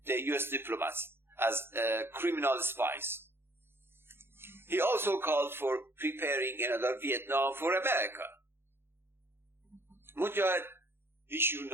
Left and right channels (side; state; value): left; late; 0.11 ms